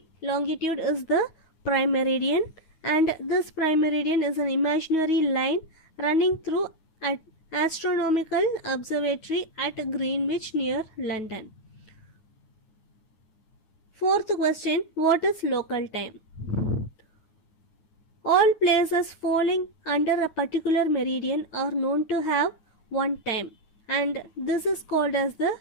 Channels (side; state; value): right; late; 9.4 ms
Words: longitude is the prime meridian, and this prime meridian is an imaginary line running through an astronomical observatory at Greenwich near London. Fourth question, what is local time? All places falling under a particular meridian are known to have one time, and this is called as the